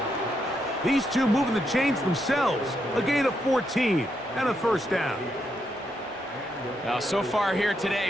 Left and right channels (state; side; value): normal; both; correlation 0.80